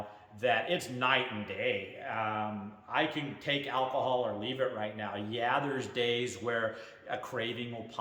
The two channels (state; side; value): identical; both; correlation 1.00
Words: that it's night and day. I can take alcohol or leave it right now. Yeah, there's days where a craving will